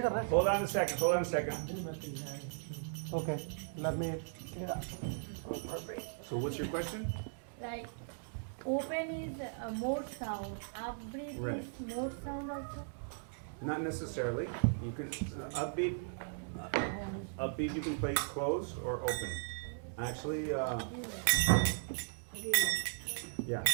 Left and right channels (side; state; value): left; silent; digital silence